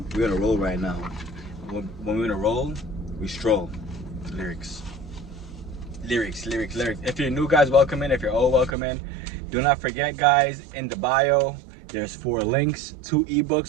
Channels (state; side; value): drops out; left; at 8.7 s